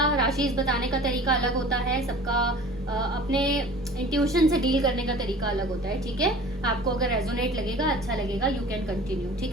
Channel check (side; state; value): both; normal; correlation 0.43